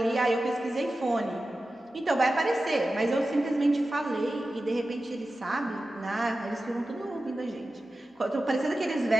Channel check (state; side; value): normal; both; correlation 0.94